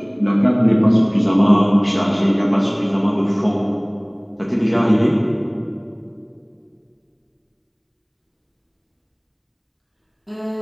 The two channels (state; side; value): identical; both; correlation 1.00